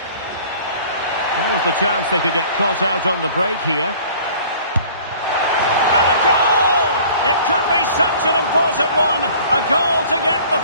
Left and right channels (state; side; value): inverted; both; correlation -0.49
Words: What was the chance they could get caught out on the break here? It could be such an important one. A goal to get the